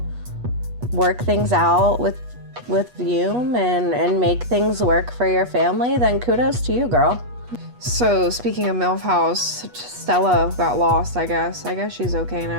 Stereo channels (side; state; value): left; late; 8.2 ms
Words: work things out with Vume and make things work for your family, then kudos to you, girl. So, speaking of MILF House, Stella got lost, I guess. I guess she's okay